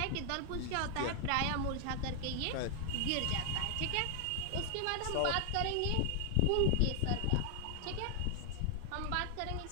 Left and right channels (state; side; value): different; both; correlation 0.00